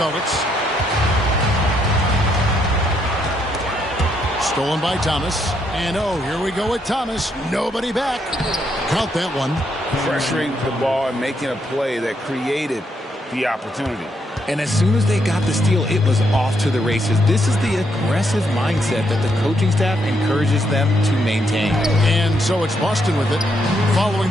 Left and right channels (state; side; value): normal; both; correlation 0.76